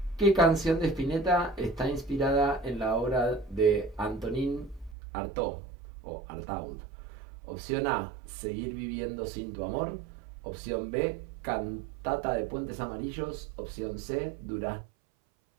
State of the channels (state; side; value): drops out; left; at 5.0 s